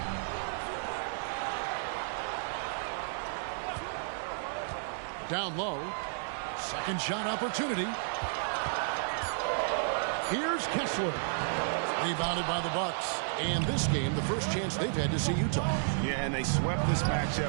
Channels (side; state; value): left; silent; 56 dB below the other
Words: Down low. Second shot opportunity. Here's Kessler. Rebounded by the Bucks. And this game, the first chance they've had to see Utah. Yeah, and they swept this